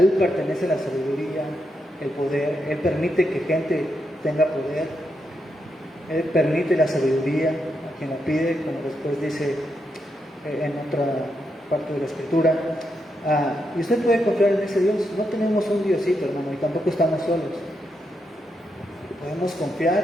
pertenece la sabiduría, el poder. Él permite que gente tenga poder. Él permite la sabiduría a quien la pide, como después dice en otra parte de la Escritura. Y usted puede confiar en ese Dios. No tenemos un Diosito, hermano, y tampoco estamos solos. Podemos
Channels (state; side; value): normal; both; correlation 0.83